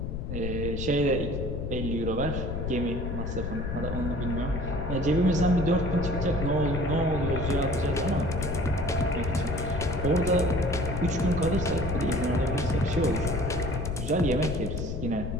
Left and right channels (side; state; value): left; noise; rumble, 3 dB below the sound